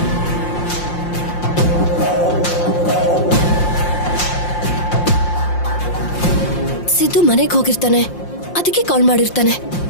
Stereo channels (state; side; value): late; right; 5.7 ms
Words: ಸಿದ್ದು ಮನೆಗೆ ಹೋಗಿರ್ತಾನೆ, ಅದಕ್ಕೆ ಕಾಲ್ ಮಾಡಿರ್ತಾನೆ.